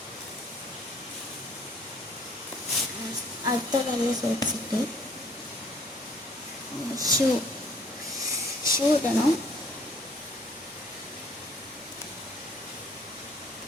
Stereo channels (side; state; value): both; normal; correlation 0.58